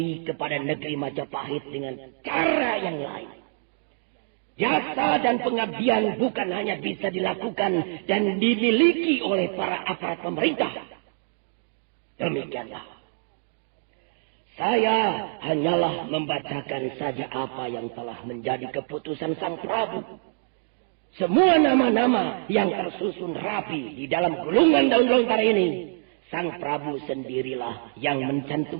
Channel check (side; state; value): left; silent; digital silence